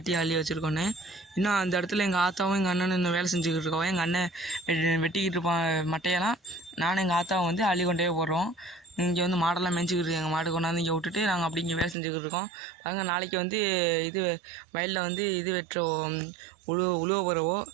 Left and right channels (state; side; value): drops out; left; at 12.0 s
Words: அள்ளி வச்சுருக்கோன்னு. இன்னும் அந்த இடத்துல எங்கள் ஆத்தாவும் எங்கள் அண்ணனும் இன்னும் வேலை செஞ்சுக்கிட்டு இருக்கோம். எங்கள் அண்ணன் வெட்டிக்கிட்டு இருப்பான் மட்டையெல்லாம். நானும் எங்கள் ஆத்தாவும் வந்து அள்ளி கொண்டே போடுறோம். இங்கே வந்து மாடெல்லாம் மேய்ச்சிக்கிட்டு எங்கள் மாடு கொண்டாந்து இங்கே விட்டுட்டு நாங்கள் அப்படி இங்கே வேலை செஞ்சுக்கிட்டு இருக்கோம். பாருங்க, நாளைக்கு வந்து இது வயலில் வந்து இது வெட்டுறோம், உழுவ போகிறவோ.